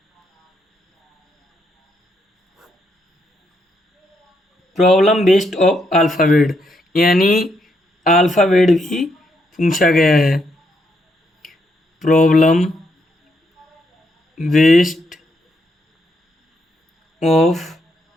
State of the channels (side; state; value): both; normal; correlation 0.77